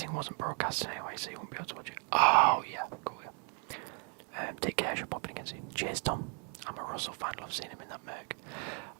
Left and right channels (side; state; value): left; quieter; 38.9 dB